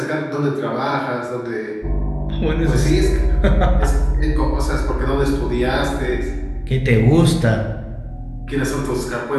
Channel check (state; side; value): identical; both; correlation 1.00